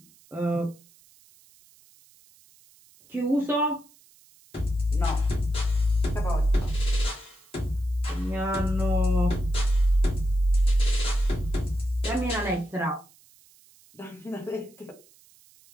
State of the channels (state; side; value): noise; right; hiss, 28 dB below the sound